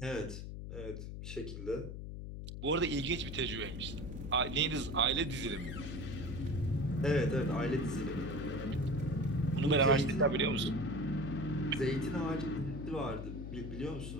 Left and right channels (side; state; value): left; noise; hum, 8 dB below the sound